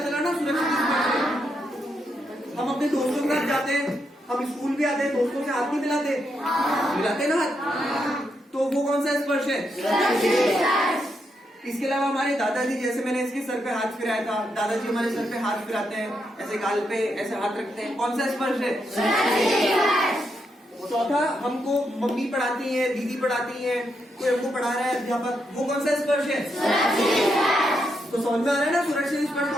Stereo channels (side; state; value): both; normal; correlation 0.81